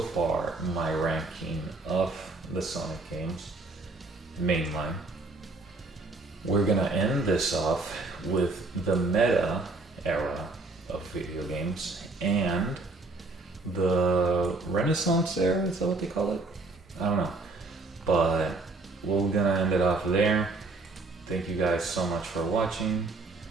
far my ranking of the Sonic games, mainline. We're gonna end this off with the meta era of video games and the Renaissance era, is that what they call it? I don't know. But we're gonna end it off there. Thank you guys so much for watching.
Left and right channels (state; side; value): quieter; left; 3.3 dB